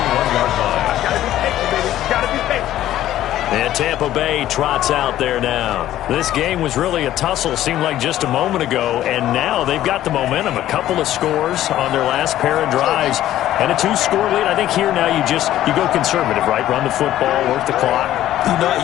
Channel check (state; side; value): quieter; right; 13.2 dB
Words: And Tampa Bay trots out there now. This game was really a tussle, seemed like just a moment ago, and now they've got the momentum. A couple of scores on their last pair of drives, and a 2-score lead. I think here now you go conservative, right? Run the football, work the clock. You know, I